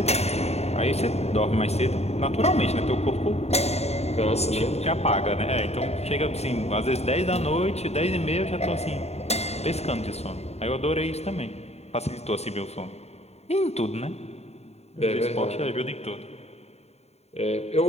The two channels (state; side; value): late; right; 0.31 ms